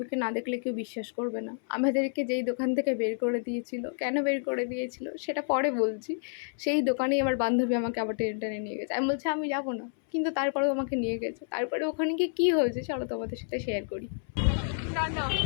না দেখলে কেউ বিশ্বাস করবে না। আমাদেরকে যেই দোকান থেকে বের করে দিয়েছিল, কেন বের করে দিয়েছিল সেটা পরে বলছি। সেই দোকানেই আমার বান্ধবী আমাকে আবার টেনে টেনে নিয়ে গেছে। আমি বলছি আমি যাবো না, কিন্তু তারপরেও আমাকে নিয়ে গেছে। তারপরে ওখানে গিয়ে কী হয়েছে চলো তোমাদের সাথে শেয়ার করি। না না,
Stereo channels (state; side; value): silent; right; 58 dB below the other